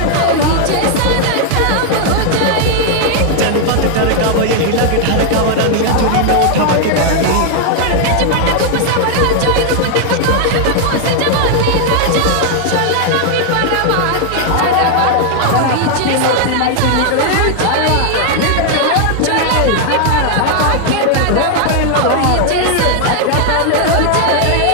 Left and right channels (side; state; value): both; different; correlation 0.00